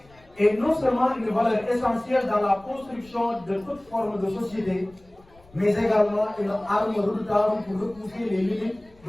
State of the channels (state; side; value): noise; left; rumble, 28 dB below the sound